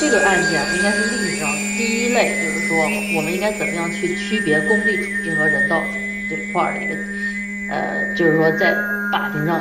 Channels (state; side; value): identical; both; correlation 1.00